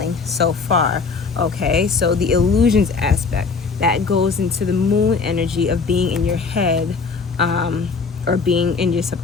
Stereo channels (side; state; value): right; quieter; 4.8 dB